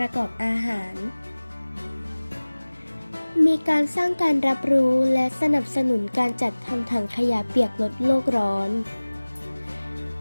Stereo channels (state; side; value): inverted; both; correlation -1.00